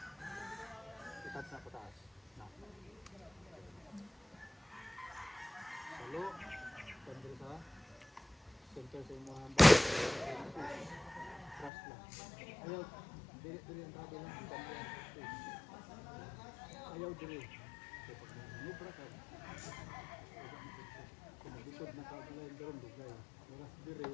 Itap na pataas. Na. Sa lock. Pag-draw sa center sa mga trust lang. Ayaw. Dili ang tabi lang. Ayaw dili. Nubra ka. Kung naglikod na kabila yung doon, dugay. Maras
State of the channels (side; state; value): right; drops out; at 11.7 s